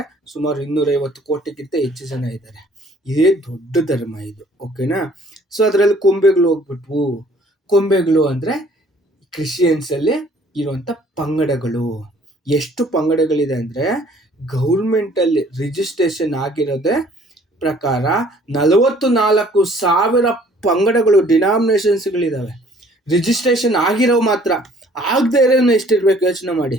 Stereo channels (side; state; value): both; normal; correlation 0.57